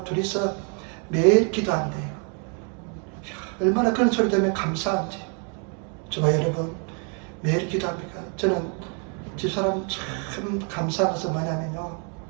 둘이서 매일 기도한대요. 얼마나 그런 소리 들으면 감사한지. 저와 여러분 매일 기도합니까? 저는 집사람 참 감사한 것은 뭐냐면요.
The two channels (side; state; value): left; quieter; 39.4 dB